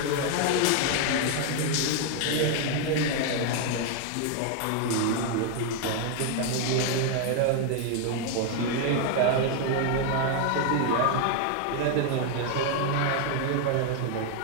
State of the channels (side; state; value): both; different; correlation 0.01